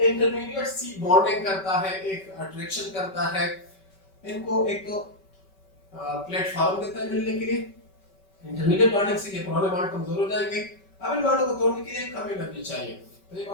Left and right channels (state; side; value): late; right; 5.2 ms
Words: इंटरमीडिएट सी बॉन्डिंग करता है, एक अट्रैक्शन करता है, इनको एक तो प्लेटफॉर्म देता है मिलने के लिए। इंटरमीडिएट बॉन्डिंग से ये पुराने बॉन्ड कमजोर हो जाएंगे, अब इन बॉन्डों को तोड़ने के लिए कम एनर्जी चाहिए, तो ये